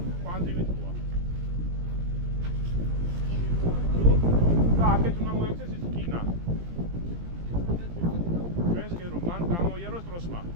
პანძივით მოვა. და აქეთ უნდა მოექცეს ის რკინა. ჩვენს კი რომ მან გამოიაროს ტროსმა.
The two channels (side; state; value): left; late; 17 ms